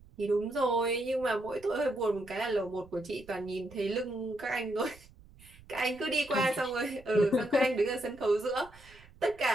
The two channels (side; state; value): right; noise; rumble, 23 dB below the sound